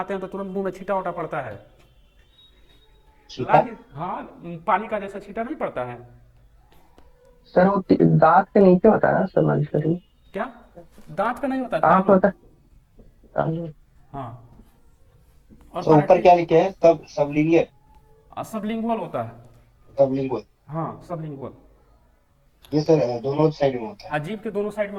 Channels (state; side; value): identical; both; correlation 1.00